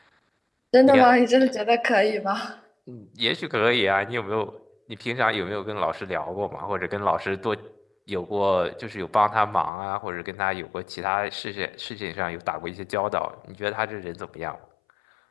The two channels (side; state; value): right; drops out; at 9.7 s